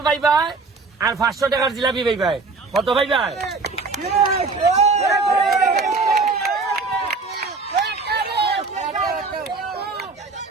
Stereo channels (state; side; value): quieter; left; 4.1 dB